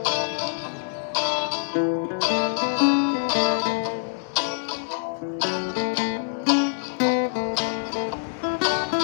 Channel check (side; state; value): right; silent; digital silence